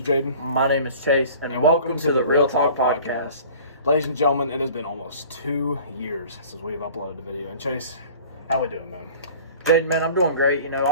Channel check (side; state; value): both; inverted; correlation -0.45